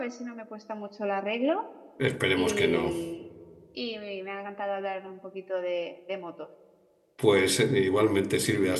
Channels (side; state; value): both; identical; correlation 1.00